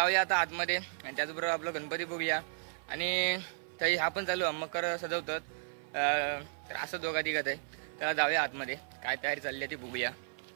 आता आतमध्ये आणि त्याचबरोबर आपलं गणपती बघूया आणि तरी हा पण चालू मकर सजवतात तर असं दोघा तिघात आहे त्याला जाऊया आतमध्ये काय तयारी चालली आहे ती बघूया.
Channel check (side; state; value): left; silent; 55 dB below the other